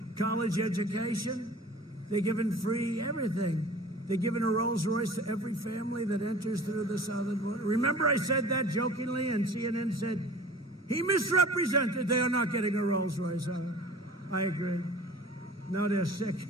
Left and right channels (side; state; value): both; normal; correlation 0.43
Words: college education. They're given free everything. They're giving a Rolls Royce to every family that enters through the southern border. Remember I said that jokingly, and CNN said, he misrepresented. They are not getting a Rolls Royce. I agree. No, they're sick.